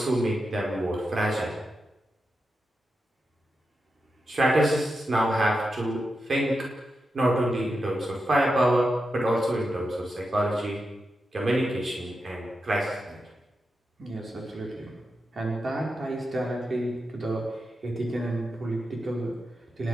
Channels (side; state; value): both; normal; correlation 0.88